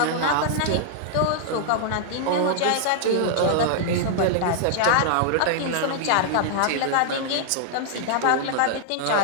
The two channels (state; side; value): different; both; correlation -0.01